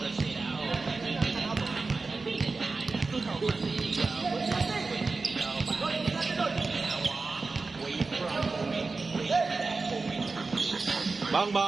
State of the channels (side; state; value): left; quieter; 3.9 dB